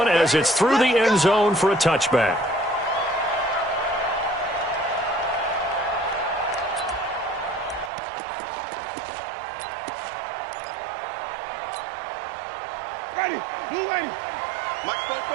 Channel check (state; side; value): drops out; left; at 7.9 s